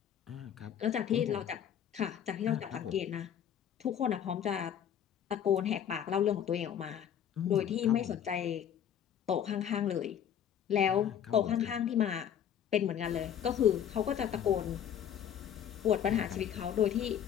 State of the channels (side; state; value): right; quieter; 9.3 dB